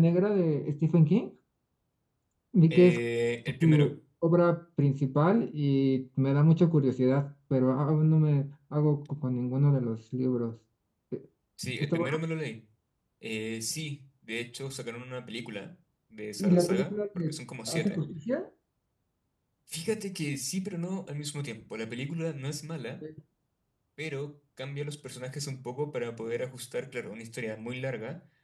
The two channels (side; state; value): both; identical; correlation 1.00